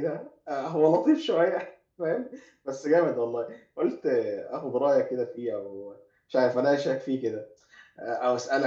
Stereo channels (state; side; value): identical; both; correlation 1.00